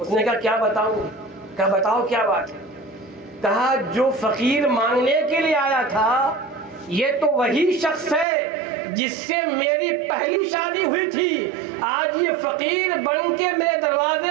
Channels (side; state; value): left; drops out; at 8.2 s